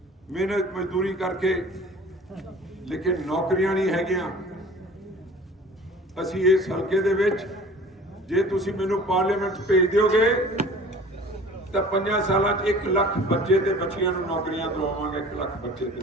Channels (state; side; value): normal; both; correlation 0.45